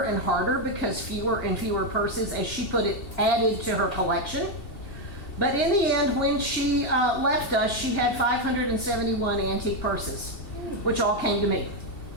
and harder because fewer and fewer purses, as she put it, added to her collection. But in the end, when she left us, she had 571 antique purses, which all came to me.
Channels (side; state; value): right; late; 2.7 ms